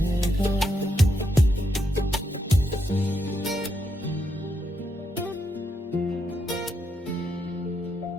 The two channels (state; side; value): normal; both; correlation 0.80